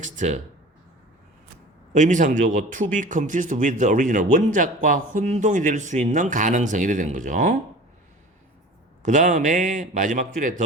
의미상조고 to be confused with the original 원작과 혼동이 될 수 있는 가능성이 되는 거죠. 그 다음에 마지막 줄에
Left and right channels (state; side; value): normal; both; correlation 0.40